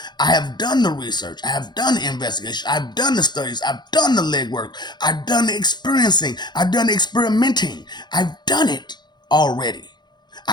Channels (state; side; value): late; right; 0.21 ms